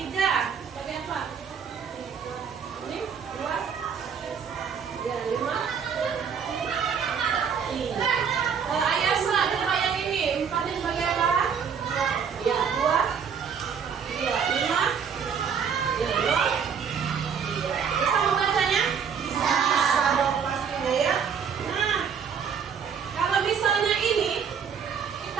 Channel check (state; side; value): quieter; left; 6.9 dB